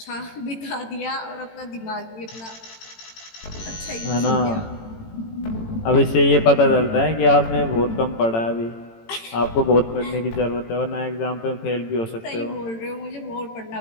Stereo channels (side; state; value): right; late; 18 ms